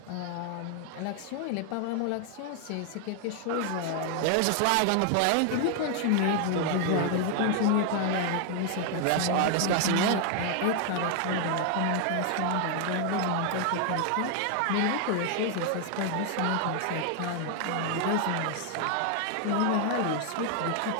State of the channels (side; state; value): both; different; correlation 0.00